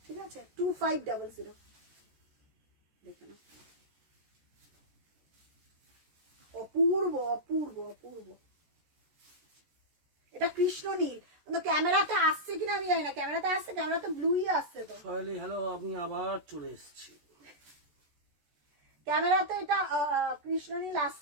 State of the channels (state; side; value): late; left; 14 ms